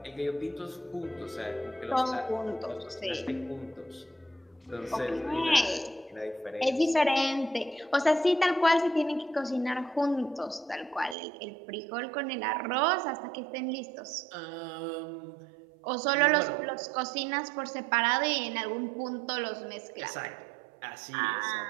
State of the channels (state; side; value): drops out; left; at 11.2 s